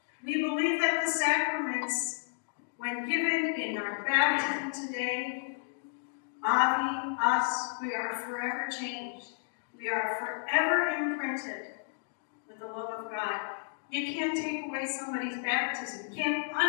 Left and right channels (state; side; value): silent; right; digital silence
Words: We believe that the sacraments, when given in our baptism today, Avi, us, we are forever changed. We are forever imprinted with the love of God. You can't take away somebody's baptism. You can't